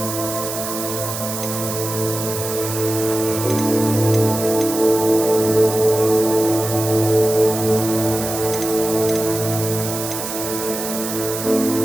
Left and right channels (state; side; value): noise; right; hiss, 6 dB below the sound